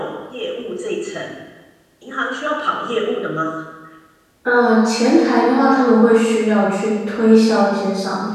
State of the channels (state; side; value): identical; both; correlation 1.00